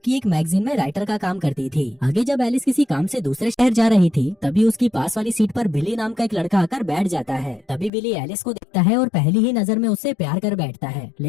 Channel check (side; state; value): right; drops out; at 7.9 s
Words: एक मैगजीन में राइटर का काम करती थी। आगे जब एलिस किसी काम से दूसरे शहर जा रही थी, तभी उसकी पास वाली सीट पर बिली नाम का एक लड़का आकर बैठ जाता है। तभी बिली एलिस को देखता है और पहली ही नजर में उससे प्यार कर बैठता है,